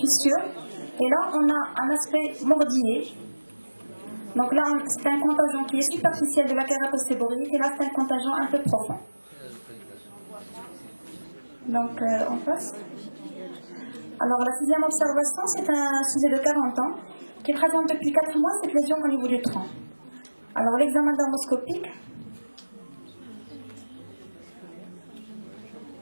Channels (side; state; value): both; inverted; correlation -1.00